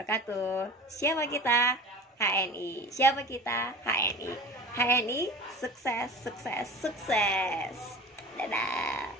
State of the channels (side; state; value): both; normal; correlation 0.35